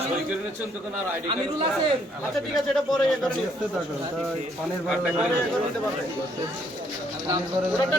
আমিরুল আছেন। আচ্ছা ঠিক আছে, এটা পরে পানির ওটা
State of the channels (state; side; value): normal; both; correlation 0.68